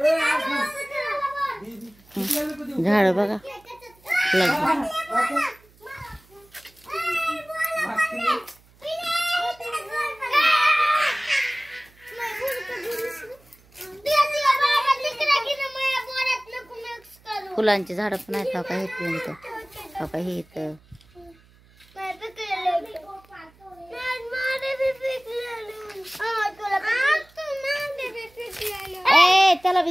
झाड बघा फुलांची झाड पण आहेत. हा का हे फ्रेंड, हा का हे इथं त्याला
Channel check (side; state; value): right; noise; hum, 29 dB below the sound